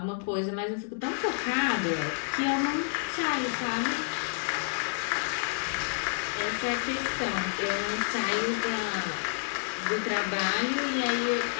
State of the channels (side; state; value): right; silent; 58 dB below the other